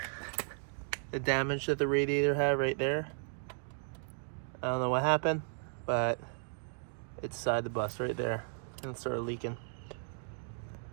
The damage that the radiator had right there. I don't know what happened, but it's inside the bus right there and it started leaking.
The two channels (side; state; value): left; silent; 54 dB below the other